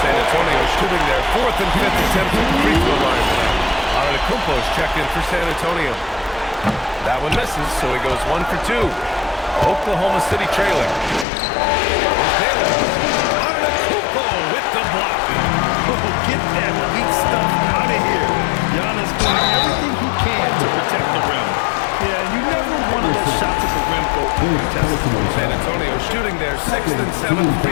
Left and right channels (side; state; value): right; drops out; at 11.2 s